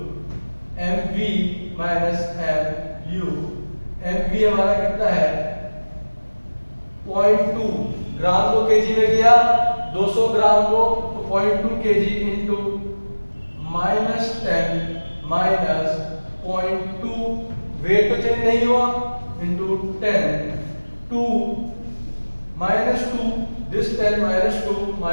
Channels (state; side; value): inverted; both; correlation -1.00